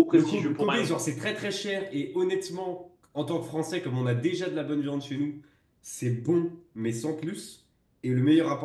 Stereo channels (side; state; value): both; identical; correlation 1.00